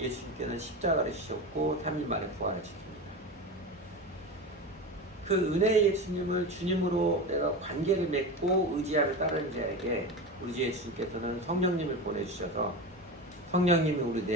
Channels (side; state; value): both; normal; correlation 0.25